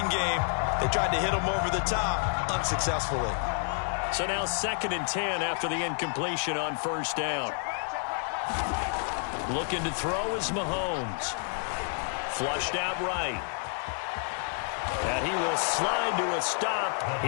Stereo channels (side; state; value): right; silent; 58 dB below the other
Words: game. They tried to hit them over the top, unsuccessfully. So now 2nd and 10 after the incompletion on first down. Looking to throw is Mahomes. Flushed out right. And he will slide to a stop.